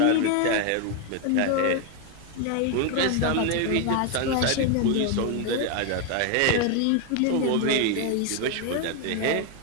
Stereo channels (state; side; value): different; both; correlation 0.01